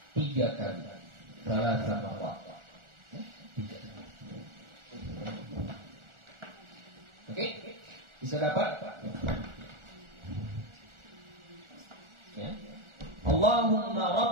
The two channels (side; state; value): left; late; 1.4 ms